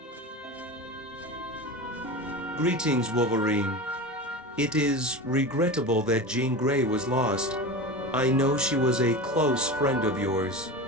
Greetings, Wolverine. It is regrettable that Jean Grey was lost. I know she was a close friend of yours.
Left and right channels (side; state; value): both; normal; correlation 0.27